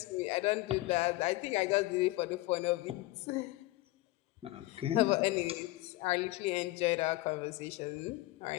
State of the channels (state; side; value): quieter; right; 18.9 dB